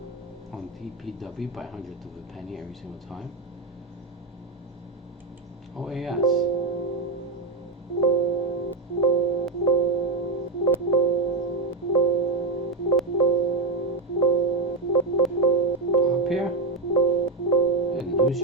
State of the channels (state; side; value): quieter; left; 3.4 dB